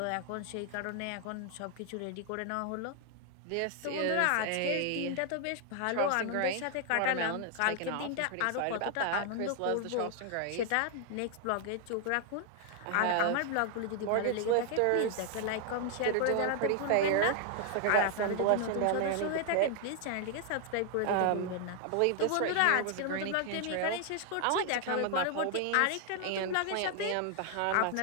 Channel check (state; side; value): different; both; correlation 0.00